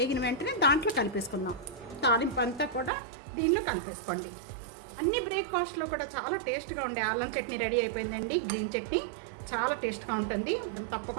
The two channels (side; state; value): left; drops out; at 2.9 s